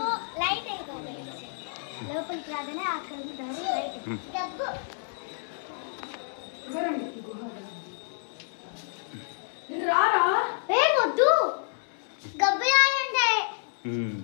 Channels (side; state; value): right; silent; 59 dB below the other